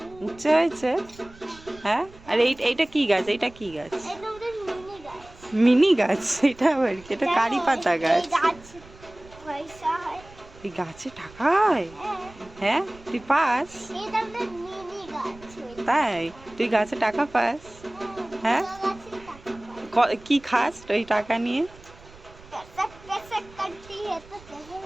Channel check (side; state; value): right; noise; rumble, 22 dB below the sound